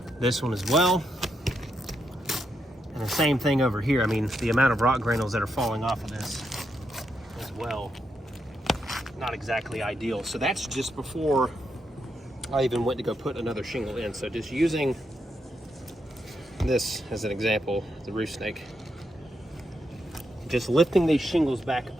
This one as well. And the same thing over here. I mean, the amount of rock granules that are falling off of this as well, not exactly ideal. So that's just before I even went to go put another shingle in. So just using this as an example, the roof snake, just lifting these shingles back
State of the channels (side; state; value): both; normal; correlation 0.81